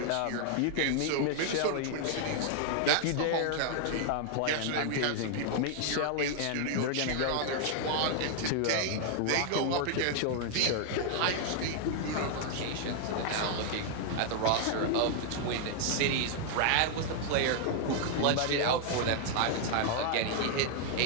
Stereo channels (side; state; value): both; different; correlation 0.00